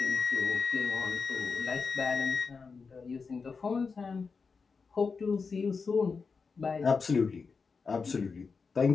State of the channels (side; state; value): right; quieter; 5.0 dB